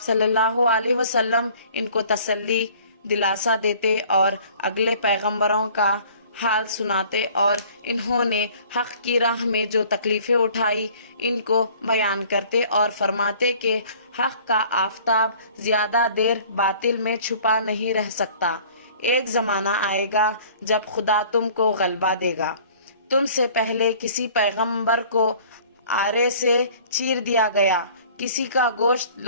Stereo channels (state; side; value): inverted; both; correlation -0.51